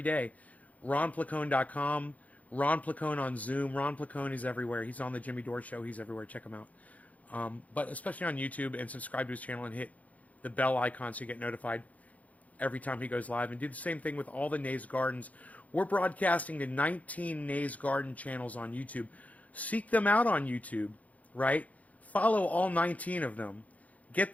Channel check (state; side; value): late; right; 0.071 ms